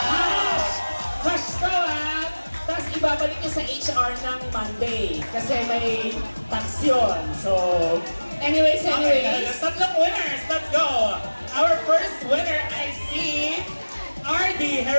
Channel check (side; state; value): both; inverted; correlation -1.00